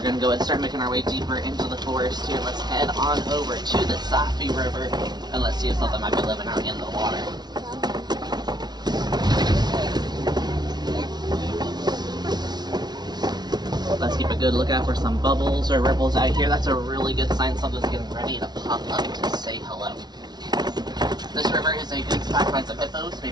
going to go ahead and start making our way deeper into the forest here. Let's head on over to the Safi River and let's see if something might be living out in the water. Let's keep a good lookout for some bubbles or ripples out here. That's a really good sign something's getting ready to pop up to say hello. This river is a good spot to find some hippos,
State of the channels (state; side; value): late; left; 0.20 ms